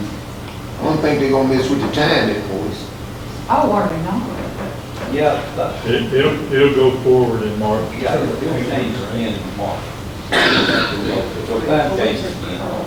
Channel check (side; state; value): both; identical; correlation 1.00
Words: I don't think they're gonna mess with the time boys. Oh, are they not? Yeah, It'll go forward in March. yeah, it'll change in March. So that changes again.